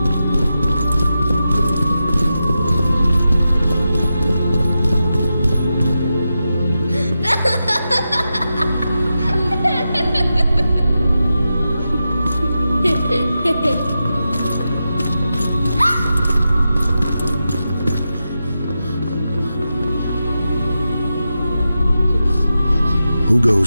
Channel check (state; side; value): inverted; both; correlation -0.90